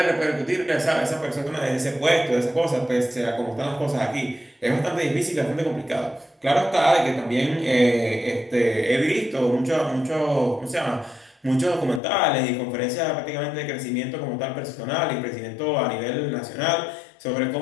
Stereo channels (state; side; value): drops out; right; at 12.0 s